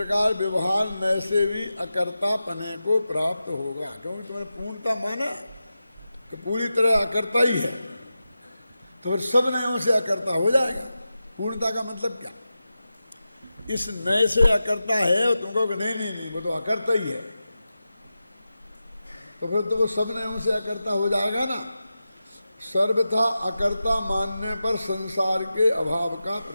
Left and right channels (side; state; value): both; inverted; correlation -0.92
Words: व्यवहार नय से भी अकर्ता पने को प्राप्त होगा। क्योंकि तुमने पूर्णता माना कि पूरी तरह अकर्ता ही है, तो फिर सब नयों से अकर्ता हो जाएगा। पूर्णता का मतलब क्या? इस नए से अकर्ता है और तुम कहोगे नहीं नहीं नहीं वो तो अकर्ता ही है, तो फिर तो वो सब नयों से अकर्ता हो जाएगा ना। सर्वथा अकर्ता मानने पर संसार के अभाव का